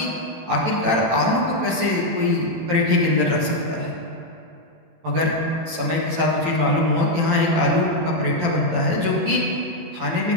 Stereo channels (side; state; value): left; late; 18 ms